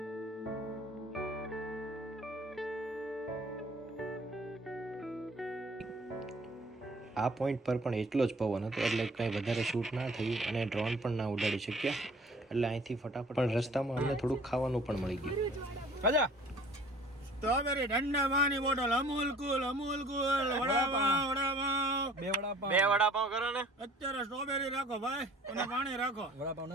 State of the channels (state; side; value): normal; both; correlation 0.51